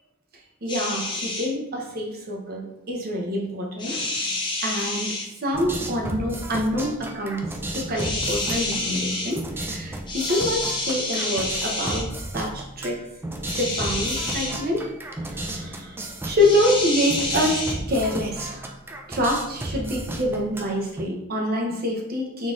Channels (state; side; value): normal; both; correlation 0.34